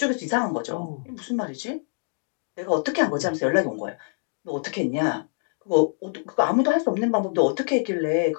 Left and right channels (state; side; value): silent; right; digital silence